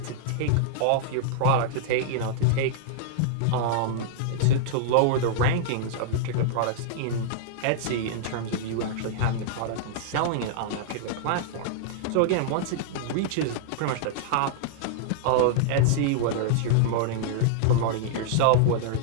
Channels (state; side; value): different; both; correlation -0.01